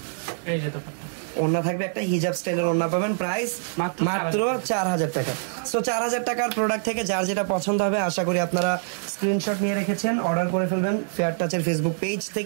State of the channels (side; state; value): left; silent; digital silence